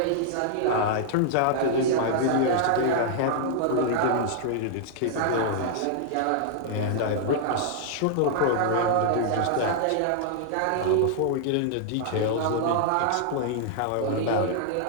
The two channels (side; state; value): both; different; correlation -0.01